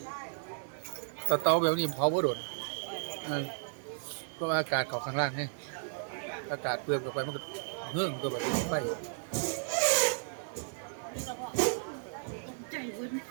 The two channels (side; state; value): left; silent; digital silence